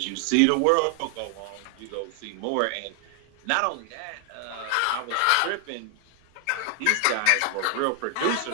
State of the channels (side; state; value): both; different; correlation 0.00